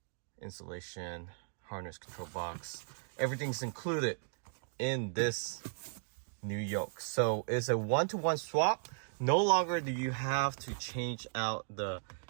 installation, harness control box, everything's included in this new yoke. So it's a one-to-one swap. No longer do you have to change out the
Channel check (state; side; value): silent; left; digital silence